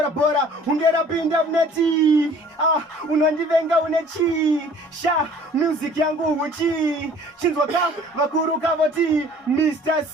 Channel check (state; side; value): normal; both; correlation 0.52